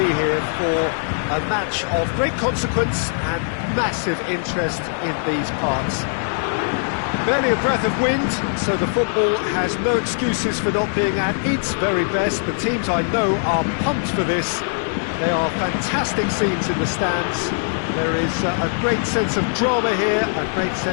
here for a match of great consequence and massive interest in these parts. Barely a breath of wind, so the football has no excuses for not being at its very best. The teams I know are pumped for this. They are fantastic scenes in the stands. There is a great sense of drama here, a great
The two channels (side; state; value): right; silent; digital silence